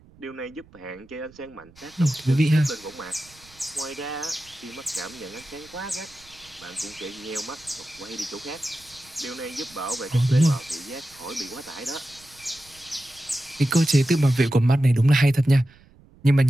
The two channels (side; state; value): right; noise; rumble, 26 dB below the sound